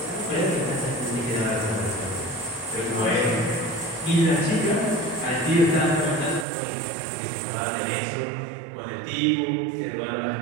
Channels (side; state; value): left; drops out; at 6.5 s